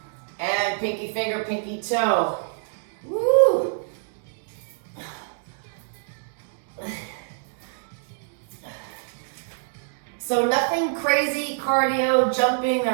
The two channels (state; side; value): silent; left; digital silence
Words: And pinky finger, pinky toe. Woo! So nothing crazy cardio, jumping,